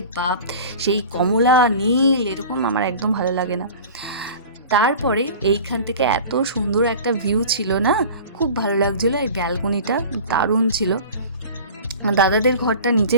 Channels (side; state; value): both; inverted; correlation -0.39